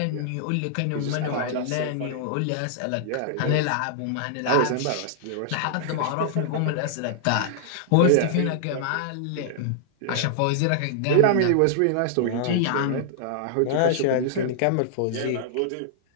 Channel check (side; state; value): both; different; correlation -0.01